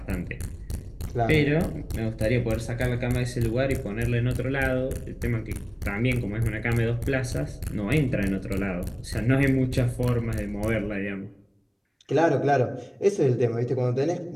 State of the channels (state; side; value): identical; both; correlation 1.00